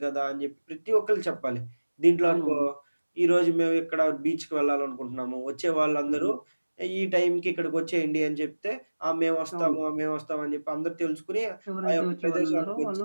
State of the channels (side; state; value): both; inverted; correlation -1.00